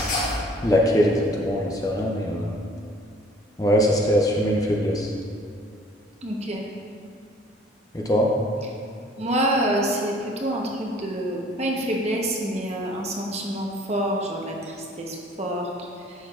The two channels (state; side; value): normal; both; correlation 0.54